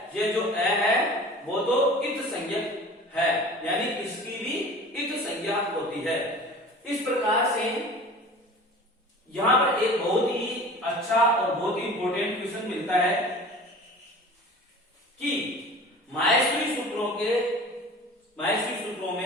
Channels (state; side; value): normal; both; correlation 0.41